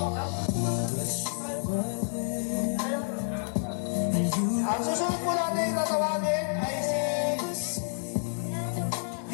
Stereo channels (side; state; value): right; silent; digital silence